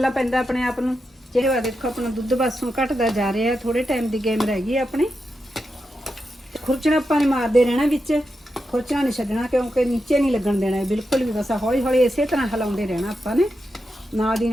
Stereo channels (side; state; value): both; normal; correlation 0.87